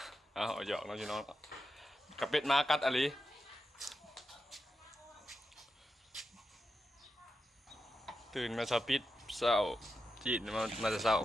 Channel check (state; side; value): normal; both; correlation 0.89